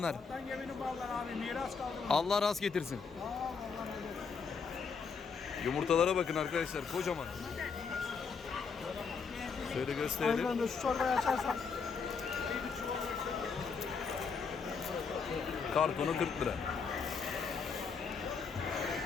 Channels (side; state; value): right; quieter; 5.4 dB